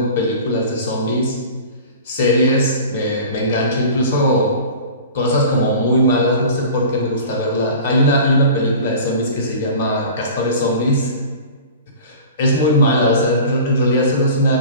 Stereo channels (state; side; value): inverted; both; correlation -0.39